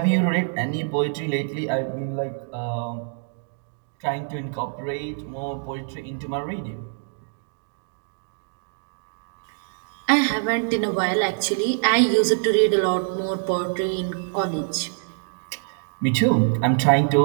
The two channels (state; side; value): silent; left; digital silence